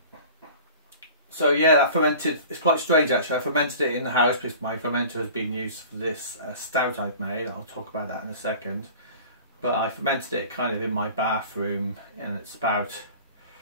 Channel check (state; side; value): inverted; both; correlation -0.42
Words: So yeah, that fermented. It's quite strange actually. I fermented it in the house because my fermenter has been used for this stout I've made. I'll talk about that in a second. But I fermented it kind of in my bathroom, and it's